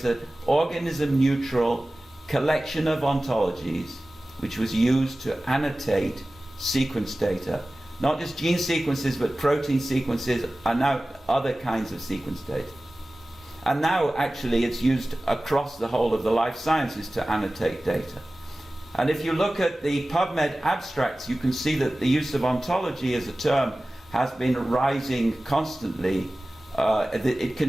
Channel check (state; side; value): normal; both; correlation 0.97